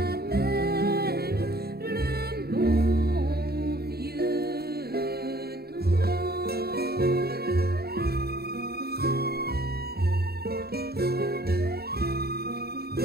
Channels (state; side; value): late; left; 0.46 ms